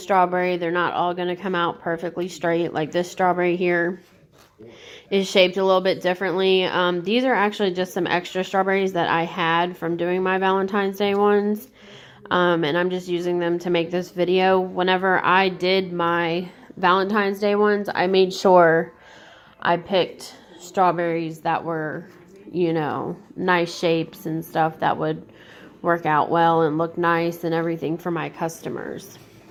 they're not all going to come out perfectly straight. Like this strawberry here is shaped a little bit differently. These are actually just some extra strawberries that I had from doing my Valentine's Day ones. And I'm just using them to make this video. Whenever I did my Valentine's Day ones, I made sure I picked strawberries that were, you know, nice shapes and stuff that would work out well and look nice and everything for my customers.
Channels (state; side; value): identical; both; correlation 1.00